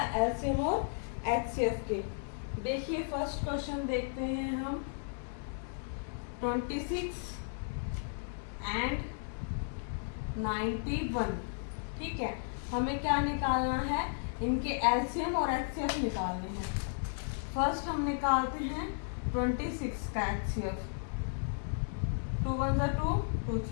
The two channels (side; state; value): right; silent; digital silence